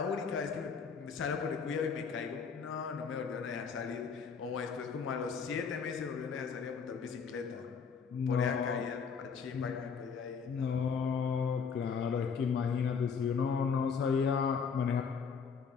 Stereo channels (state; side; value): quieter; right; 6.0 dB